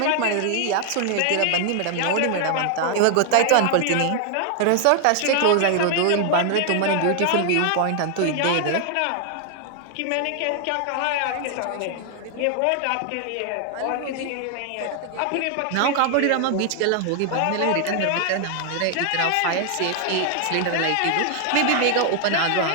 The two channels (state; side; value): different; both; correlation 0.00